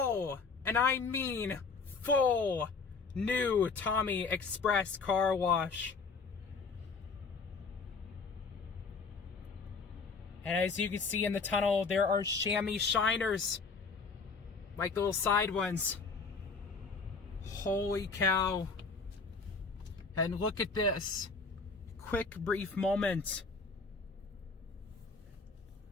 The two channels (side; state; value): right; quieter; 4.6 dB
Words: and I mean full, new Tommy Express Car Wash. And as you can see in the tunnel, there are chamois shiners. Like the little side ones. Holy cow. And look at this. Quick, brief moment.